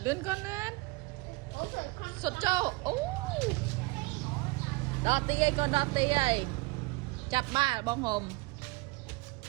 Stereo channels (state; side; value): quieter; left; 24.5 dB